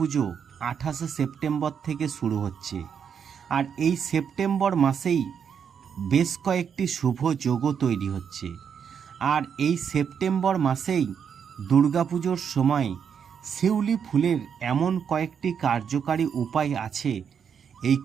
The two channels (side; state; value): left; quieter; 7.4 dB